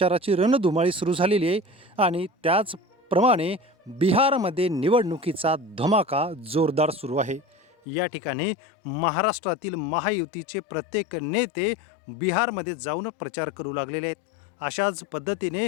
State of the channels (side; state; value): right; drops out; at 7.7 s